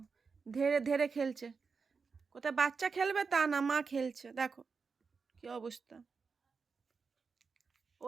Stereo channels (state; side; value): quieter; left; 5.1 dB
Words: ধেড়ে ধেড়ে খেলছে। কোথায় বাচ্চা খেলবে তা না, মা খেলছে, দেখো কি অবস্থা।